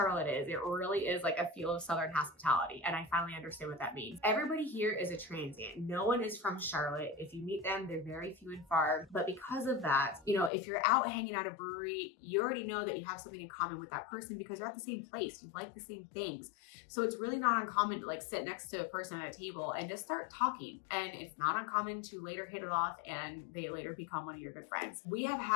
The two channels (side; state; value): right; drops out; at 10.5 s